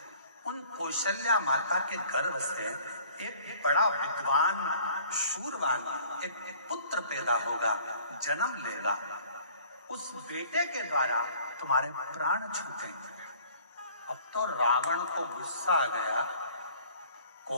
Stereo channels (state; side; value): inverted; both; correlation -0.53